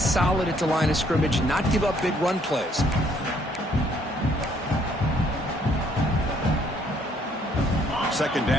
at the line of scrimmage, not give up big run plays. Second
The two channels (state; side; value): normal; both; correlation 0.66